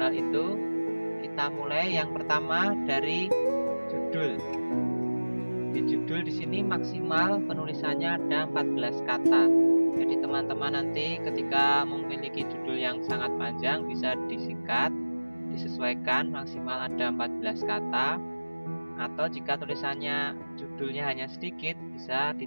itu? Kita mulai yang pertama dari judul. Di judul di sini maksimal penulisannya ada 14 kata. Jadi teman-teman nanti ketika memiliki judul yang sangat panjang bisa disingkat, disesuaikan maksimal ada 14 kata. Atau jika tulisannya judulnya hanya sedikit bisa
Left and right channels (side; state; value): both; inverted; correlation -1.00